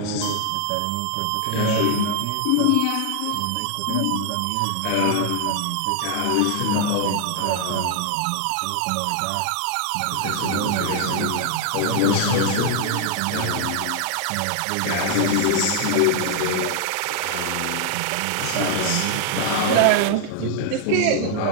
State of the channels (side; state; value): both; different; correlation 0.00